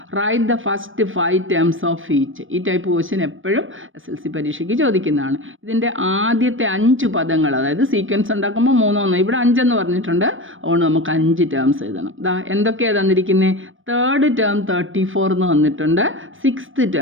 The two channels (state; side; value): late; left; 0.58 ms